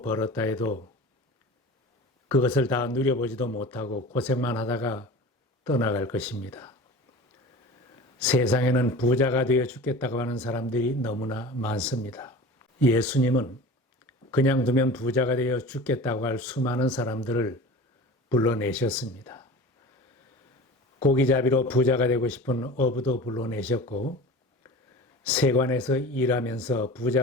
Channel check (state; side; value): normal; both; correlation 0.36